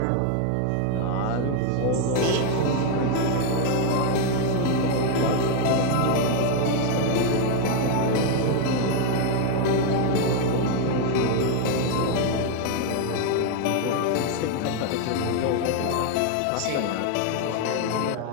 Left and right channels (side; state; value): both; different; correlation 0.01